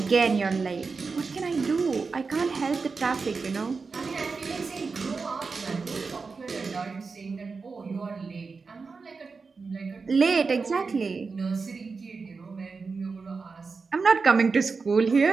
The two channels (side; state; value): left; quieter; 4.6 dB